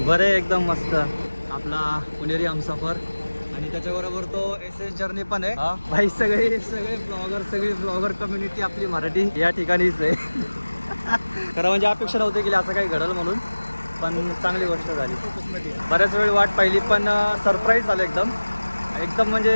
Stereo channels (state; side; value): inverted; both; correlation -1.00